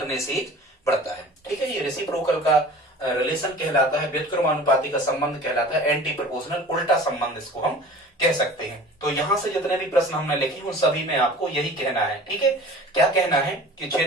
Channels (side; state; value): both; normal; correlation 0.42